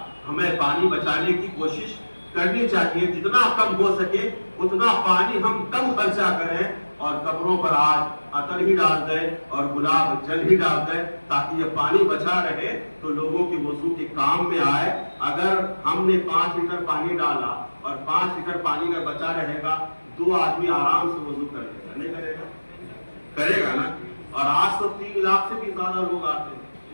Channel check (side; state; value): both; inverted; correlation -1.00